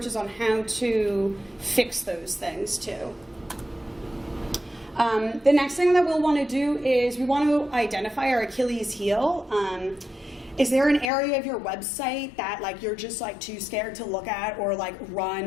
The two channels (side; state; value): right; drops out; at 11.1 s